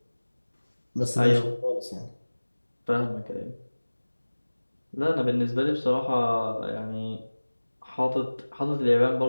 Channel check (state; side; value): inverted; both; correlation -1.00